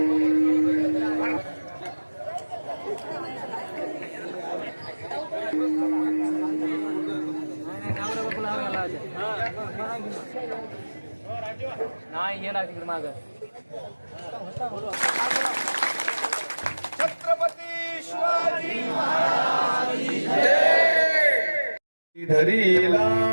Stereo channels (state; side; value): inverted; both; correlation -1.00